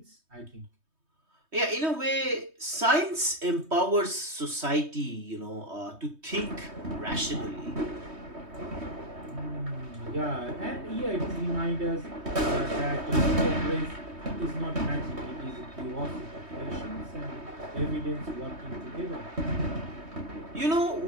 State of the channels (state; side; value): late; left; 3.2 ms